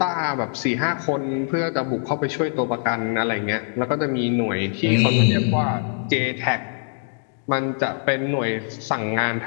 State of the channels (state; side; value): silent; right; 63 dB below the other